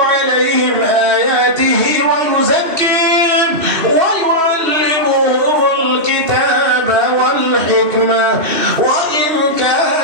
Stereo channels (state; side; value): late; left; 3.1 ms